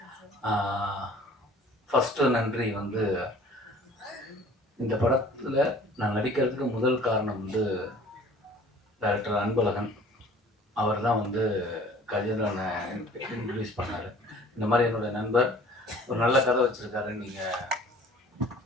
ஃபஸ்ட்டு நன்றி வந்து இந்த படத்தில் நான் நடிக்கிறதுக்கு முதல் காரணம் வந்து டைரக்டர் அன்பழகன். அவர் தான் வந்து கஜேந்திரனை இன்ட்ரடியூஸ் பண்ணார். இந்த மாதிரி என்னுடைய நண்பர் ஒரு நல்ல கதை வச்சுருக்காரு, நீங்கள்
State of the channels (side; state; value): both; normal; correlation 0.49